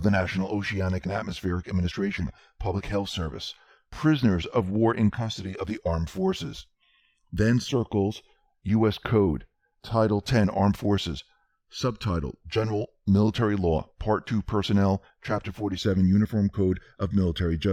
the National Oceanic and Atmospheric Administration, Public Health Service, prisoners of war in custody of the armed forces. Then circles U.S. Code, Title 10, Armed Forces, Subtitle, General Military Law, Part 2, Personnel, Chapter 47, Uniform Code of Military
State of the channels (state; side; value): identical; both; correlation 1.00